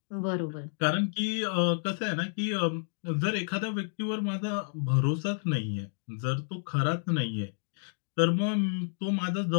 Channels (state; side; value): silent; right; digital silence